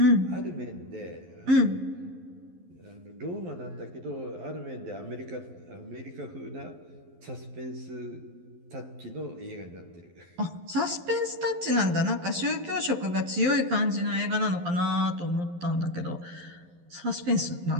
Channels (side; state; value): left; late; 11 ms